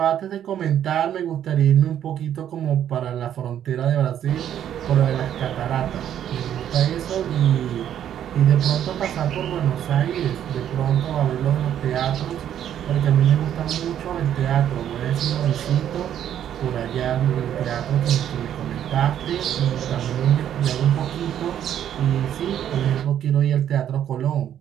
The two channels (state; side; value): quieter; left; 10.3 dB